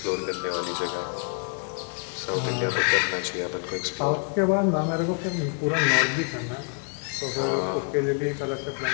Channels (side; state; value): right; quieter; 39.6 dB